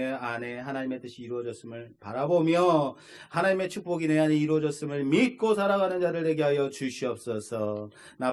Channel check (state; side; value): identical; both; correlation 1.00